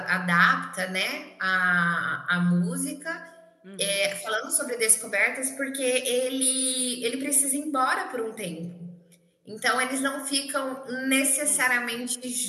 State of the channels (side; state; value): both; identical; correlation 1.00